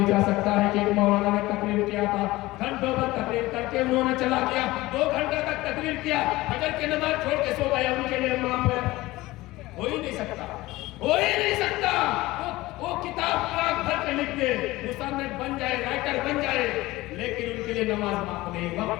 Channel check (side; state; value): right; quieter; 18.9 dB